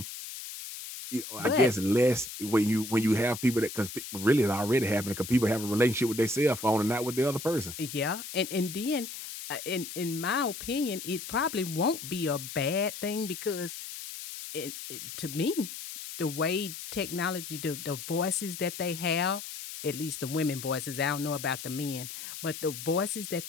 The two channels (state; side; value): noise; left; hiss, 9 dB below the sound